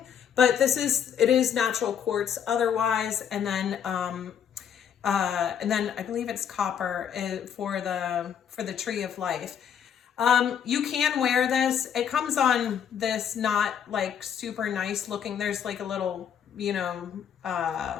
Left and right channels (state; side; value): quieter; right; 8.5 dB